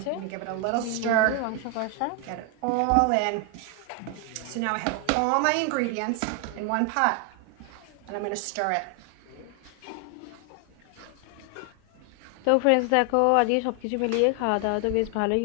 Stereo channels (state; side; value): different; both; correlation 0.00